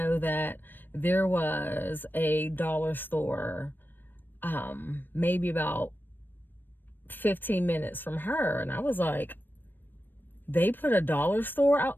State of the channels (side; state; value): right; late; 0.094 ms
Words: that there was a dollar store, maybe about 15 minutes from her. And I was like, they put a dollar store out?